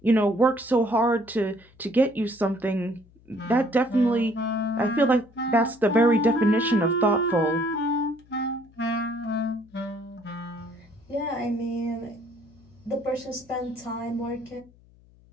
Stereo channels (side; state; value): left; noise; hum, 28 dB below the sound